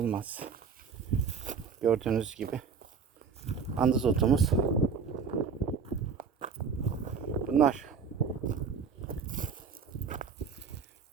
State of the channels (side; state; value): left; quieter; 5.9 dB